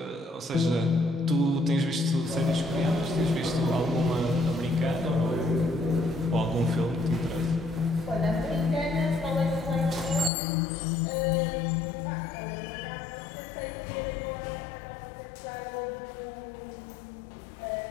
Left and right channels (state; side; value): drops out; right; at 10.3 s